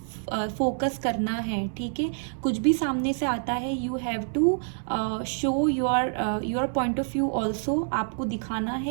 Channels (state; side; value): silent; left; digital silence